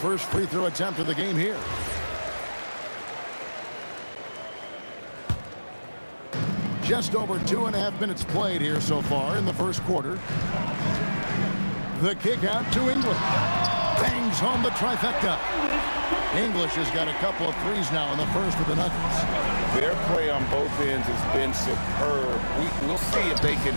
free throw attempt of the game here. Just over 2.5 minutes played here so far in the first quarter. The kick out to English. Bangs home the trifecta. English has got a couple of threes now in the first of the Nuggets. Their play on both ends has been superb. We'll see if they can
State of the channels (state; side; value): inverted; both; correlation -1.00